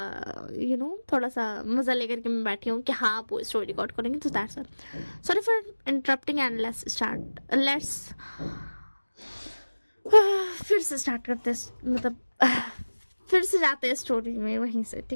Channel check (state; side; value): inverted; both; correlation -1.00